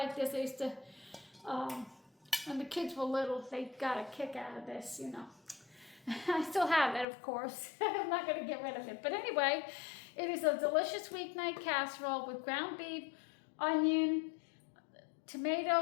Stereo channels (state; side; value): drops out; right; at 7.1 s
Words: this. I used to, when the kids were little, they got a kick out of this, you know. I still have it, of course. I'm not going to get rid of it. But anyway, it is a delicious weeknight casserole with ground beef, onion,